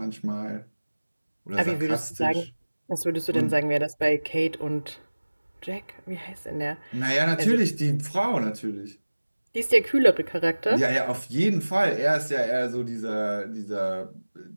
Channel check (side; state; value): both; inverted; correlation -1.00